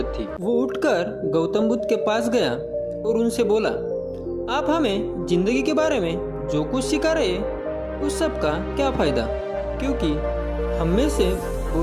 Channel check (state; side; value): identical; both; correlation 1.00